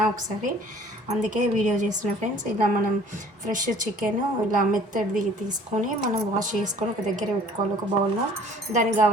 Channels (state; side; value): normal; both; correlation 0.53